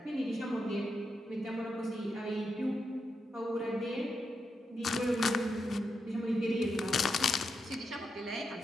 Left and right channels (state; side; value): normal; both; correlation 0.85